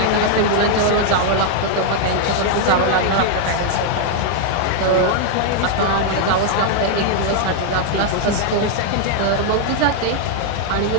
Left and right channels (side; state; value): both; different; correlation 0.00